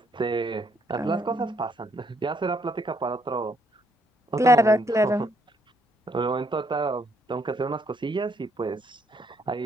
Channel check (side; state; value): both; normal; correlation 0.72